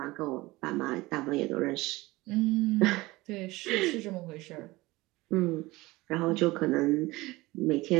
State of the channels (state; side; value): quieter; left; 20.4 dB